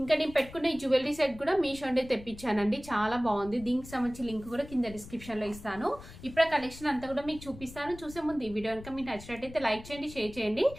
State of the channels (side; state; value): left; noise; rumble, 16 dB below the sound